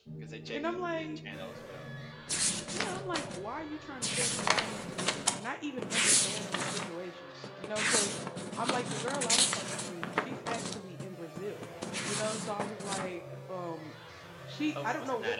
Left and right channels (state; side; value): identical; both; correlation 1.00